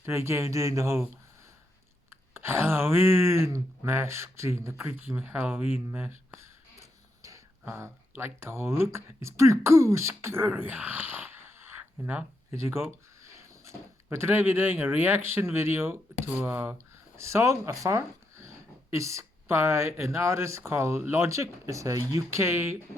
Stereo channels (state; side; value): normal; both; correlation 0.81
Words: Today I'm doing the whole Halloween mask thing, the creepy Halloween mask. Like the whole look. It's pretty cool, scary. You know, here you go. But today we're doing a reaction video to a song afar. It's by an artist called Logic. It's a UK